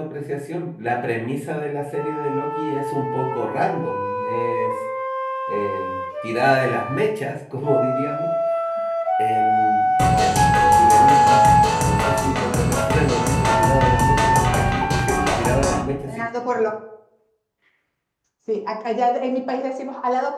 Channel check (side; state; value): both; identical; correlation 1.00